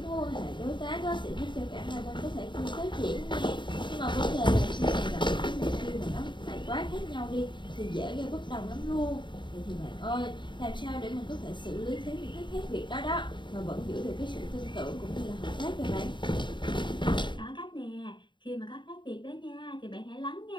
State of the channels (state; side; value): late; right; 0.23 ms